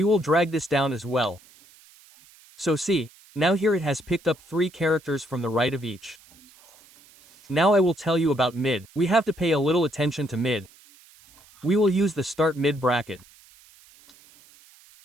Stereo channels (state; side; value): noise; right; hiss, 26 dB below the sound